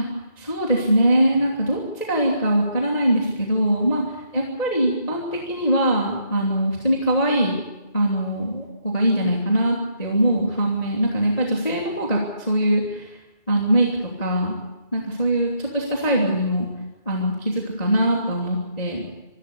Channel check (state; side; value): late; right; 2.3 ms